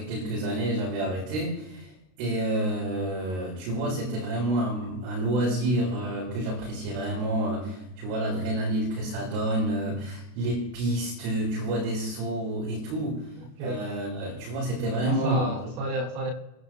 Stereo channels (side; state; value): left; late; 32 ms